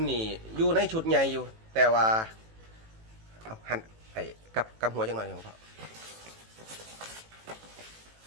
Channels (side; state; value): left; late; 18 ms